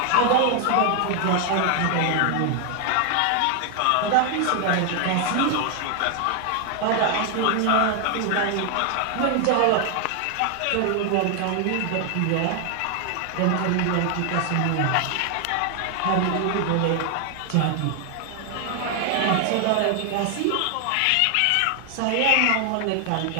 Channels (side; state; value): both; different; correlation 0.00